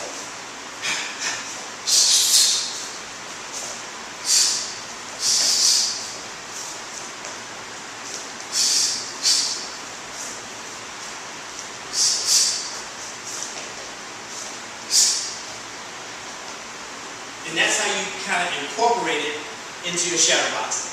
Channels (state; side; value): identical; both; correlation 1.00